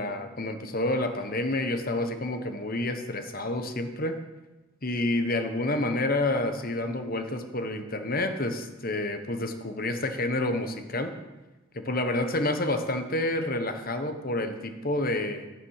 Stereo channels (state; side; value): normal; both; correlation 0.30